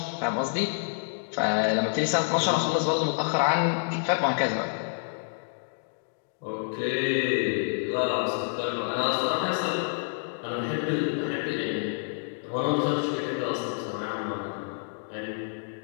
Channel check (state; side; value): silent; right; digital silence